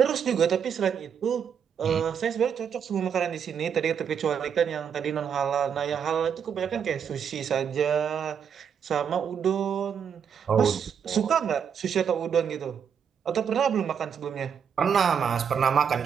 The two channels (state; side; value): quieter; left; 7.5 dB